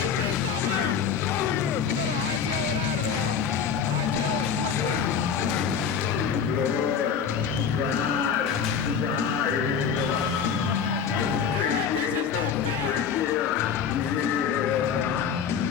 You better hightail it out of there, and hightail it quickly. Eric, this is not fair!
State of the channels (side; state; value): right; quieter; 7.0 dB